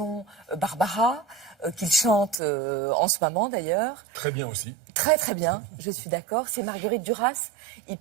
Barbara, qu'il chante en ce moment, d'ailleurs. Très bien aussi. Très bien, je suis d'accord. C'est Marguerite Duras. Il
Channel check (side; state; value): left; drops out; at 2.4 s